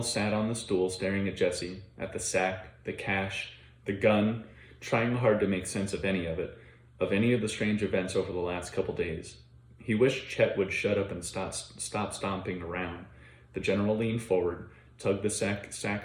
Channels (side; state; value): both; identical; correlation 1.00